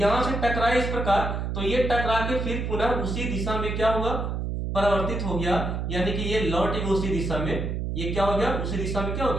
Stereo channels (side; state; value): right; noise; hum, 2 dB below the sound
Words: से टकराए इस प्रकार, तो ये टकरा के फिर पुनः उसी दिशा में क्या हुआ, परावर्तित हो गया, यानी कि ये लौट गया उसी दिशा में, ये क्या हो गया, उसी दिशा में क्या हो